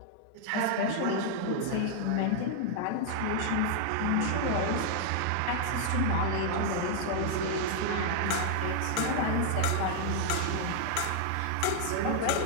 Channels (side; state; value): both; different; correlation 0.00